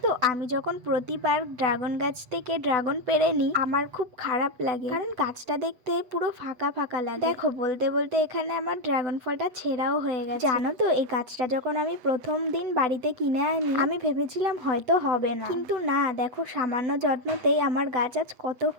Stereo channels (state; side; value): late; left; 8.0 ms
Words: তো আমি যখন প্রতিবার ড্রাগন গাছ থেকে ড্রাগন পেড়ে নিই, আমার খুব খারাপ লাগে, কারণ গাছটা দেখতে পুরো ফাঁকা ফাঁকা লাগে। দেখো বলতে বলতে এখানে আমার ড্রাগন ফলটা ছেঁড়াও হয়ে গেছে। জানো তো এই গাছটা যখন আমি প্রথম দিন বাড়িতে কিনে আনি, আমি ভেবেছিলাম হয়তো হবে না, কিন্তু না, দেখো সামান্য যত্নতেই আমার গাছ আজ কত